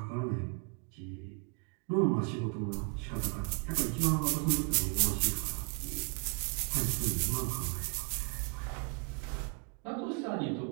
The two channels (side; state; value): left; quieter; 36.3 dB